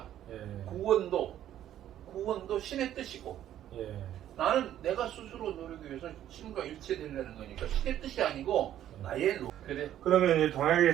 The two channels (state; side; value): quieter; left; 11.6 dB